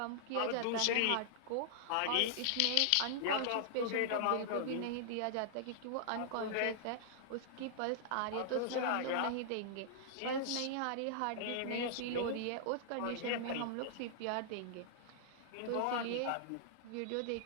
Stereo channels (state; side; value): different; both; correlation -0.01